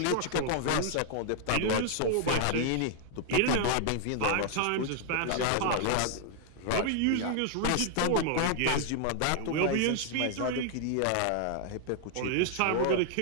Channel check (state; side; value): different; both; correlation 0.00